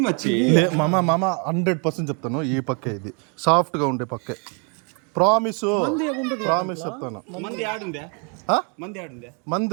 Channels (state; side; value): quieter; left; 36.5 dB